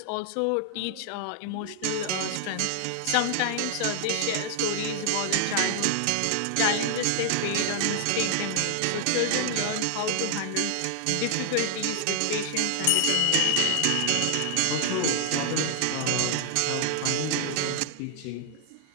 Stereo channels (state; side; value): different; both; correlation 0.00